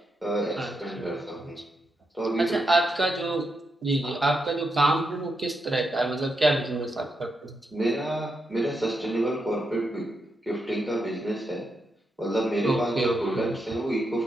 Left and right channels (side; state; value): both; normal; correlation 0.84